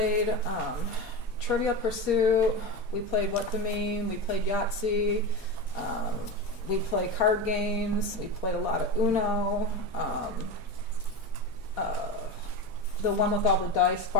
Trivial Pursuit. We played What the Meme. We played Yahtzee. We play card games. We played a lot of Uno. The one with all the dice,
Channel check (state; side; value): normal; both; correlation 0.22